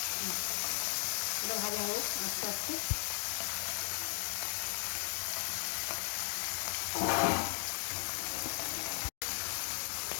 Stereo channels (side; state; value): right; silent; digital silence